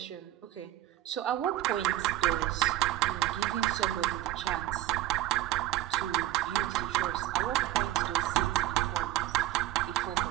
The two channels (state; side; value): quieter; left; 14.6 dB